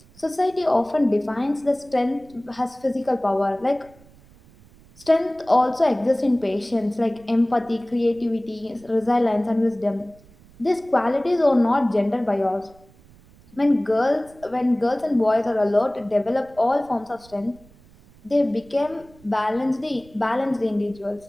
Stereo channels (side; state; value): right; noise; rumble, 26 dB below the sound